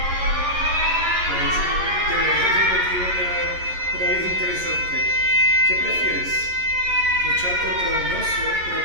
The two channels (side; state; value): left; late; 11 ms